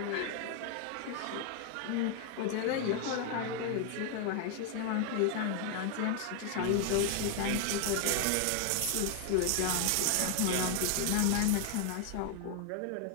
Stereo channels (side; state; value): both; different; correlation 0.00